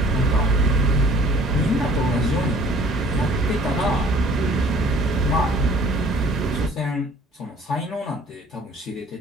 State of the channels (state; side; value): normal; both; correlation 0.53